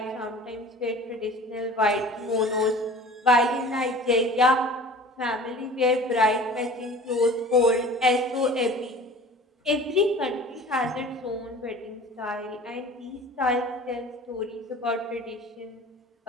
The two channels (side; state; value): both; normal; correlation 0.42